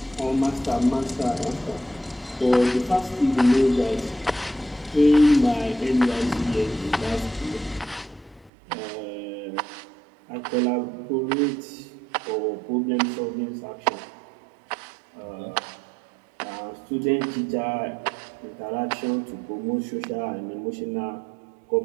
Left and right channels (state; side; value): drops out; left; at 8.5 s